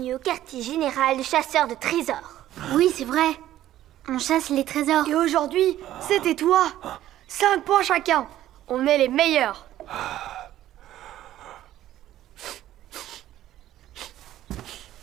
au quartier général de chasseurs de trésors. Oui, c'est vrai. On chasse les trésors. Et aujourd'hui, c'était toi. 5 points chacun. On est les meilleurs.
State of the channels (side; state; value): left; quieter; 13.2 dB